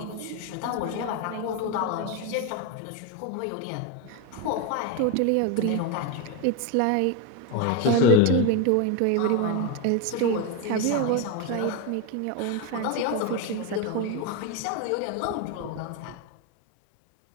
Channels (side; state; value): both; different; correlation 0.03